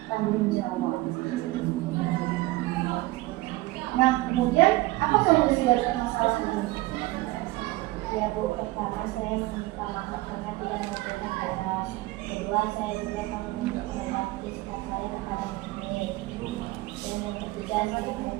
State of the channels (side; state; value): left; quieter; 19.5 dB